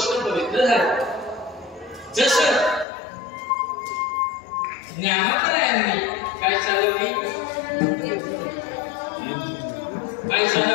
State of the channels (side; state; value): right; drops out; at 2.9 s